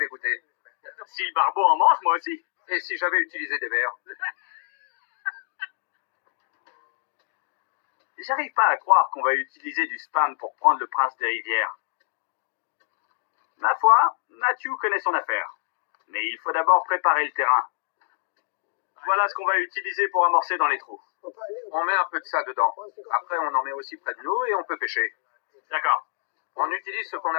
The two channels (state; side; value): silent; right; 61 dB below the other